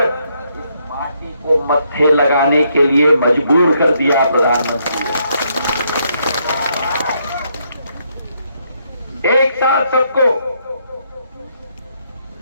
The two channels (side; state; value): both; inverted; correlation -0.75